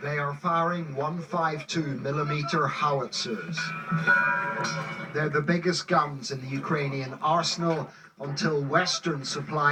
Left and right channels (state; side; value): identical; both; correlation 1.00